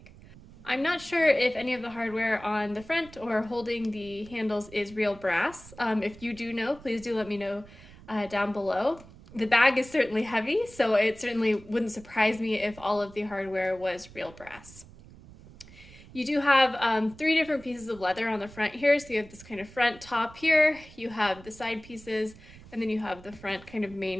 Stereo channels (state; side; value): noise; right; rumble, 20 dB below the sound